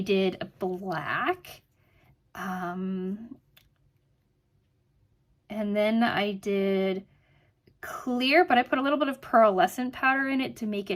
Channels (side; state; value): both; identical; correlation 1.00